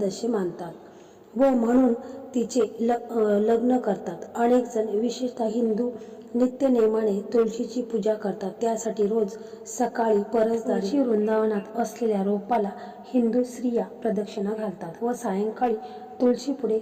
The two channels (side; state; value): both; identical; correlation 1.00